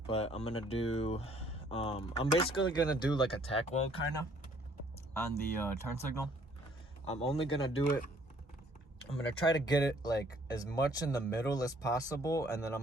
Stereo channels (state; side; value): normal; both; correlation 0.61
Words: But I'm gonna do, I'm basically gonna do like a tack weld kind of on the turn signal. I'm only gonna do it, I'm gonna try to get it like as much in the middle as possible, and then I'm